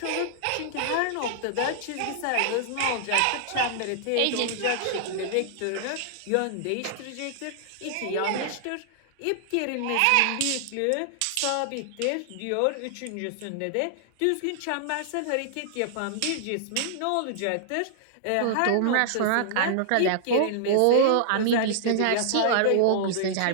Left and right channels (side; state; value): both; different; correlation -0.01